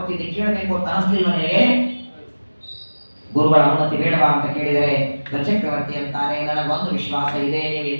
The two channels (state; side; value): inverted; both; correlation -1.00